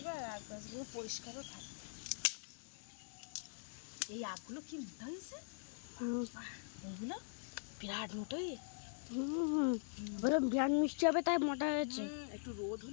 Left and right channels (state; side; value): silent; right; digital silence